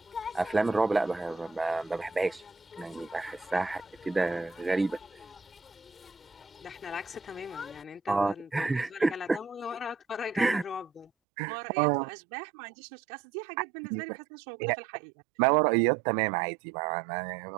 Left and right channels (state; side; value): drops out; left; at 11.1 s